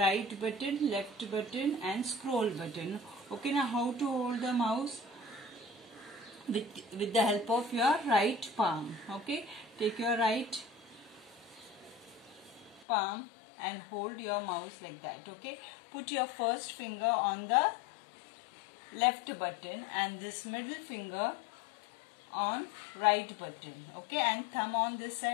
button, left button and scroll button. Okay, now how to hold the mouse? With the help of your right palm, okay? Take your right palm and hold your mouse like that, okay? Put your first finger on the left button and this middle finger on right button, okay? And thumb on this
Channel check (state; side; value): drops out; right; at 12.9 s